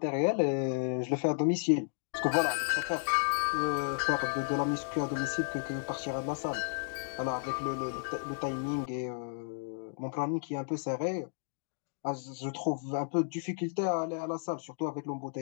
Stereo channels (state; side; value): silent; right; digital silence